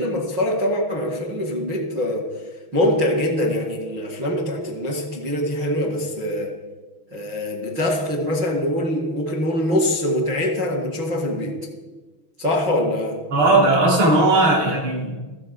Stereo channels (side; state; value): left; late; 6.2 ms